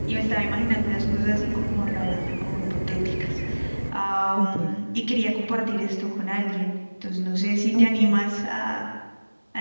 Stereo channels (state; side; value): inverted; both; correlation -1.00